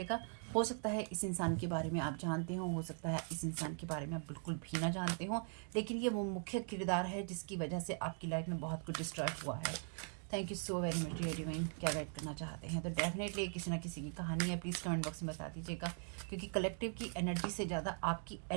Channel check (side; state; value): left; silent; 51 dB below the other